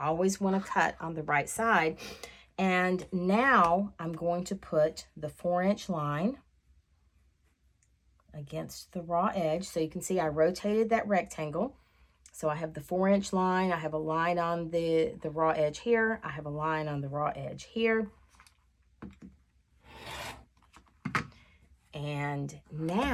want to cut on the right side. And now I'm going to put the 4-inch line against the raw edge. So you can see I rotated that rectangle. So I have the 4-inch line, I have a line on the raw edge here, I have a line on the raw edge here. And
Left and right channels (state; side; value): identical; both; correlation 1.00